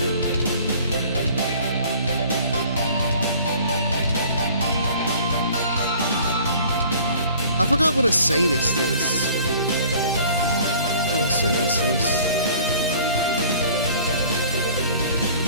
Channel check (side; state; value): both; inverted; correlation -0.50